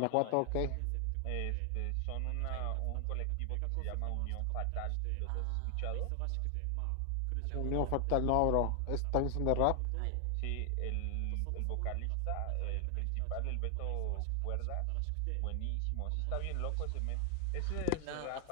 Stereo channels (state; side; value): different; both; correlation 0.00